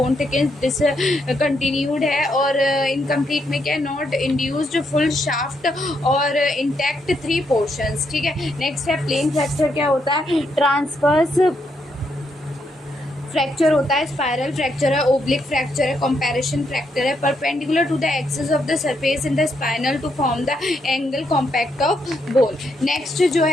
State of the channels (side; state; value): both; normal; correlation 0.78